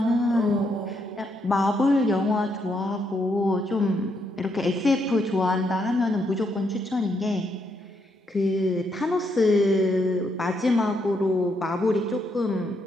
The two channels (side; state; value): both; normal; correlation 0.77